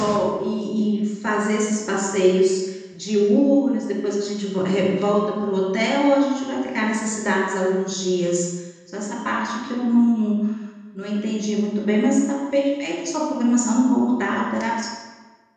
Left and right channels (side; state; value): both; identical; correlation 1.00